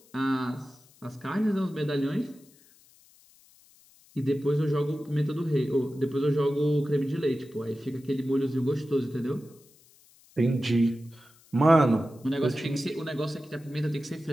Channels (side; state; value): left; noise; hiss, 28 dB below the sound